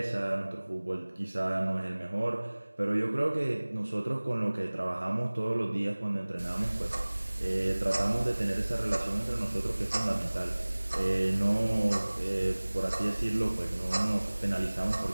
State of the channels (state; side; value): inverted; both; correlation -1.00